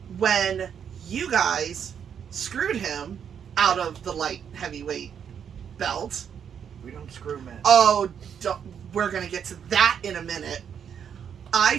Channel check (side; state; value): left; quieter; 8.0 dB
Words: When you guys screwed him out of the light heavyweight belt, We don't screw men. Oh, we're going to get to that in a minute. I